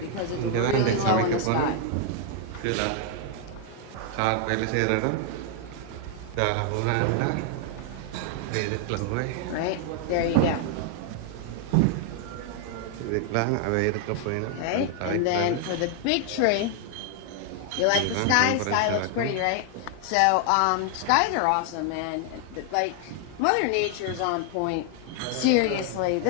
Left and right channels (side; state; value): both; different; correlation 0.00